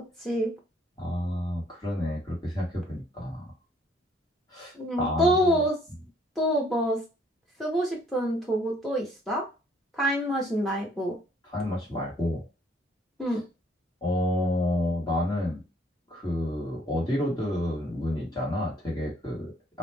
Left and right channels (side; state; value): both; normal; correlation 0.63